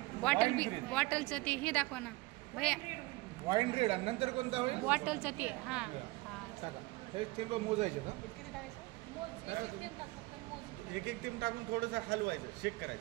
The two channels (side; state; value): left; quieter; 21.8 dB